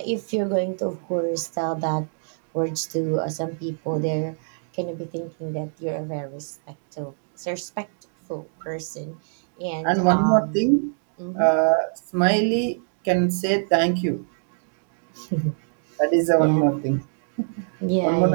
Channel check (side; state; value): left; silent; digital silence